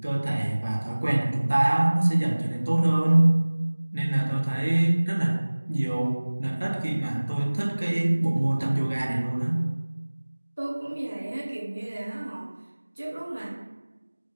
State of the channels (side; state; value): both; inverted; correlation -1.00